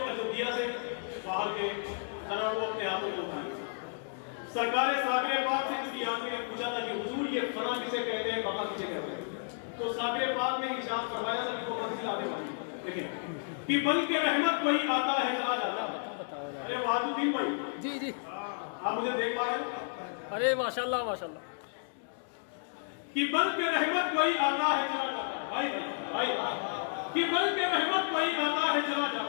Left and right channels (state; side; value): silent; right; digital silence